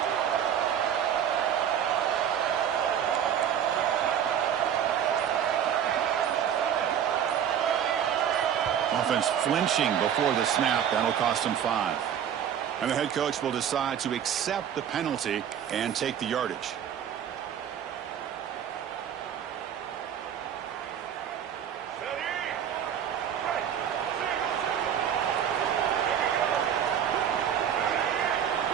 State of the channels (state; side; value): quieter; left; 9.1 dB